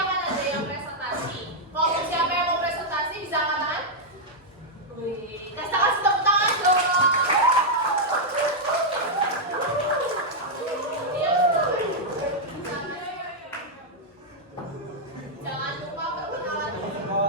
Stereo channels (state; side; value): normal; both; correlation -0.04